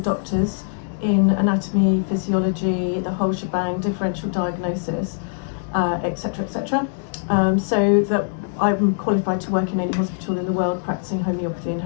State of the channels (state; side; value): silent; right; digital silence